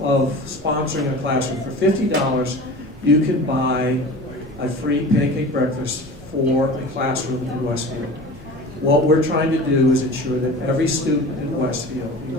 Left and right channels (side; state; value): both; normal; correlation 0.36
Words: sponsoring a classroom. For $50, you can buy a free pancake breakfast for a classroom in Westfield. What we're trying to do is ensure that every student in Westfield,